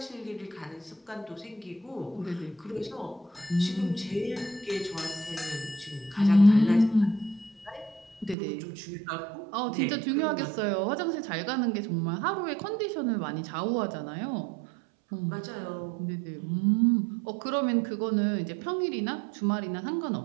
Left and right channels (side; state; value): left; drops out; at 8.3 s